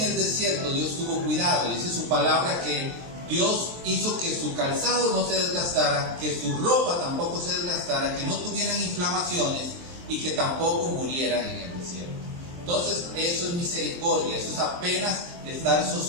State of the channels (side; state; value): left; late; 23 ms